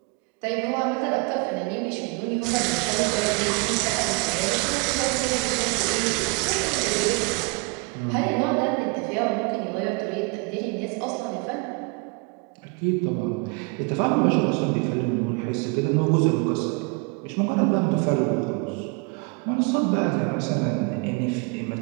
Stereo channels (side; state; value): left; quieter; 29.7 dB